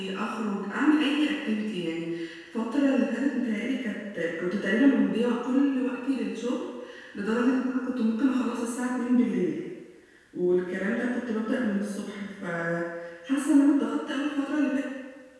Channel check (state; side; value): identical; both; correlation 1.00